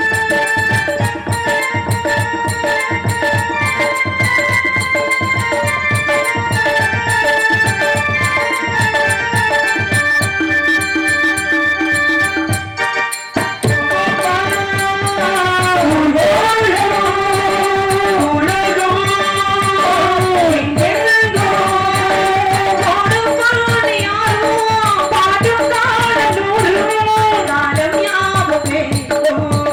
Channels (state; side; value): identical; both; correlation 1.00